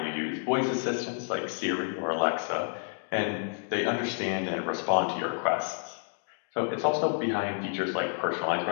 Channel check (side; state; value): right; silent; 58 dB below the other